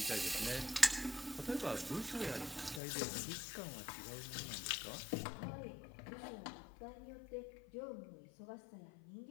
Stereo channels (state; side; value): drops out; right; at 2.8 s